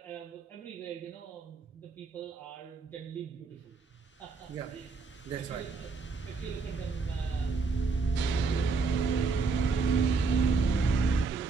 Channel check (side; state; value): left; quieter; 4.5 dB